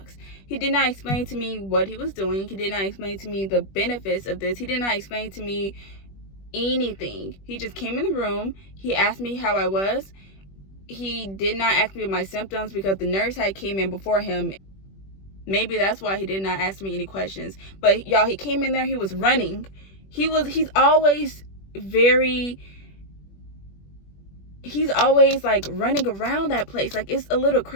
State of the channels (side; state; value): right; late; 21 ms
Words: He did not explain to me what he was doing. He did not explain to me the benefits of this. He did not explain to me anything. He just came in the room. He asked me how I was. He did not ask me my symptoms because the nurse had came in before him. Maybe that's why he did not ask me any questions. But y'all, he came in there, he was running. He's always like running around that place. Like, it's a little